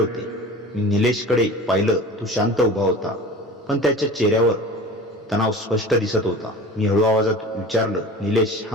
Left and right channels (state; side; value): normal; both; correlation 0.38